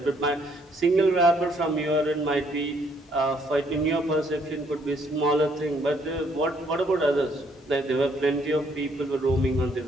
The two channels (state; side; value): normal; both; correlation 0.67